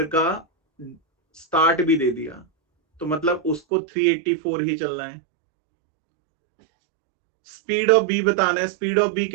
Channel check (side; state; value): left; drops out; at 3.6 s